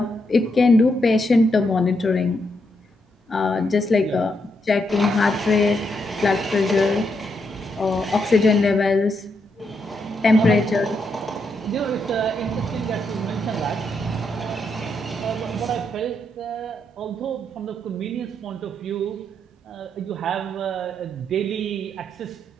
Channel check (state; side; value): normal; both; correlation 0.80